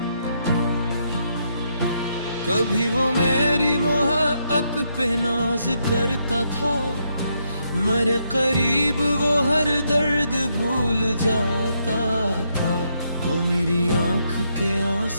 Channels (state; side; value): inverted; both; correlation -0.77